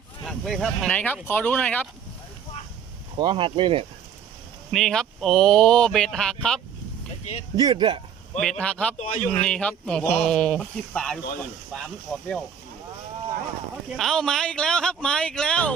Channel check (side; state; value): left; quieter; 7.8 dB